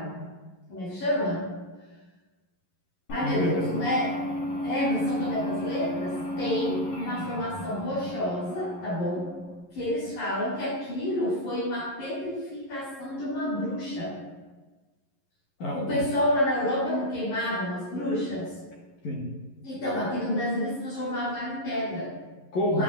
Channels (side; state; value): right; late; 11 ms